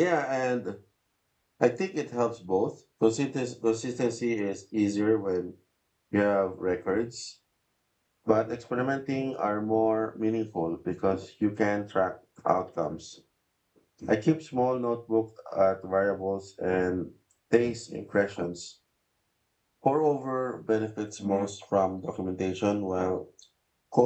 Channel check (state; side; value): identical; both; correlation 1.00